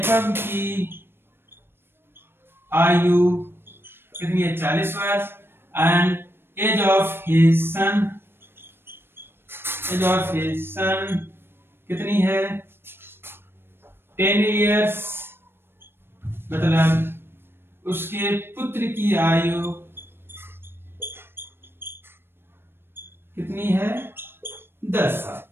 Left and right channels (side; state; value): left; late; 0.11 ms